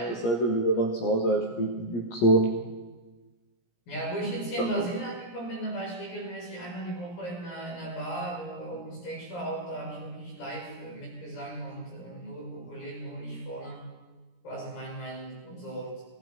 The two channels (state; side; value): late; right; 17 ms